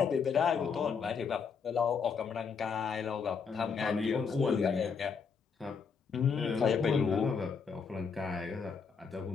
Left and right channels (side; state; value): right; quieter; 5.8 dB